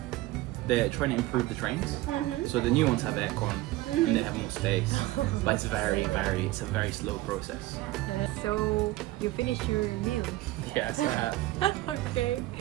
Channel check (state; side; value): quieter; left; 17.8 dB